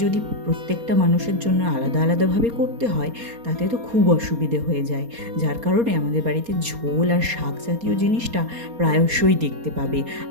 যদি প্রত্যেকটা মানুষের জন্য আলাদা আলাদাভাবে করতে হয় তাতে তো খুব অসুবিধে হয়ে যায়। যার কারণে আমাদের বাড়িতে ঝোল আর শাক জাতীয় জিনিসটা প্রায়শই দেখতে পাবে।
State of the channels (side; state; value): left; late; 4.3 ms